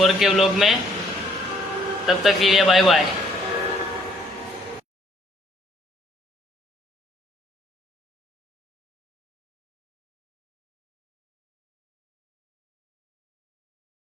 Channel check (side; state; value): both; normal; correlation 0.64